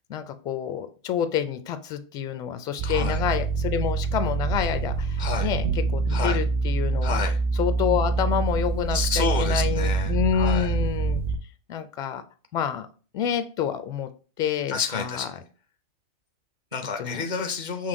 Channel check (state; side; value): late; left; 2.2 ms